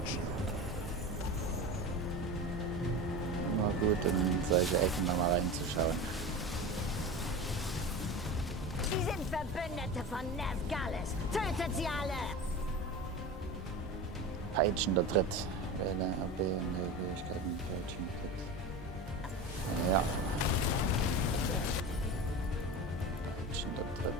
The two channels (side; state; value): both; normal; correlation 0.29